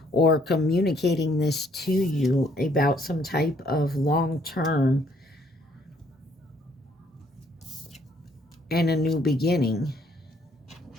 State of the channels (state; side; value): normal; both; correlation 0.66